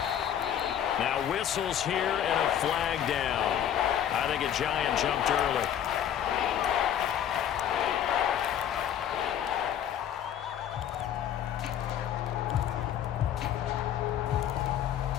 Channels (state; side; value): quieter; right; 9.9 dB